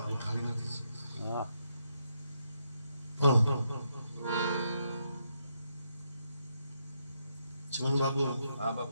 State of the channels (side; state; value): both; inverted; correlation -0.79